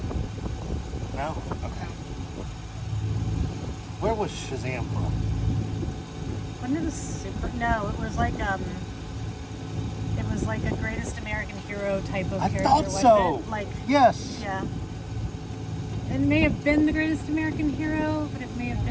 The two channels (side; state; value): both; identical; correlation 1.00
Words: No? Okay. Where was Shazam from? Wasn't it a super? No, it was like a Greatest American Hero type of character. I thought so. It? Like, yes. Yeah. It may have been the Greatest American Hero, but it may have